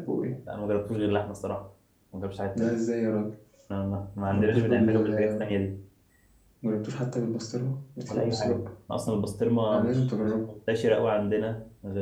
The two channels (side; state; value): both; identical; correlation 1.00